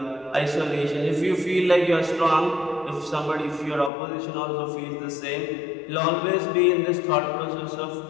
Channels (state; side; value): drops out; right; at 3.9 s